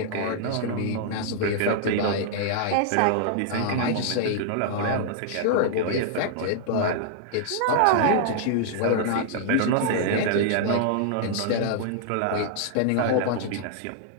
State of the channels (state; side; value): different; both; correlation -0.01